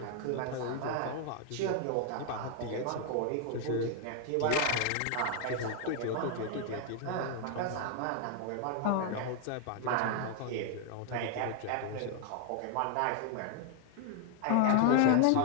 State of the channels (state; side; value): different; both; correlation 0.00